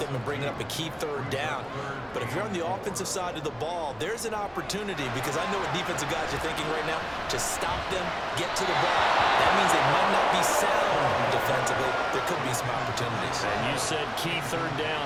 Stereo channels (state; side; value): identical; both; correlation 1.00